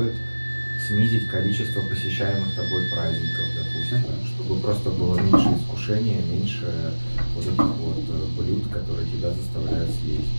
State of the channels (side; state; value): both; inverted; correlation -1.00